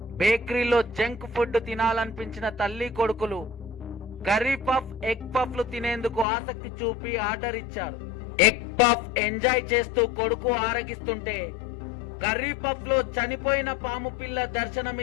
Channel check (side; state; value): right; drops out; at 6.2 s